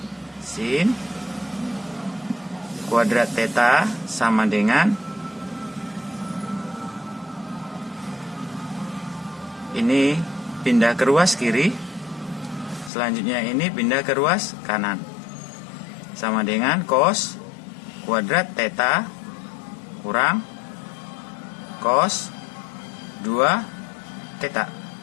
sin kuadrat theta sama dengan ini pindah ke ruas kiri, selanjutnya ini pindah ke ruas kanan, sama dengan cos kuadrat theta kurang cos 2 theta.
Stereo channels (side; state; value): right; drops out; at 12.9 s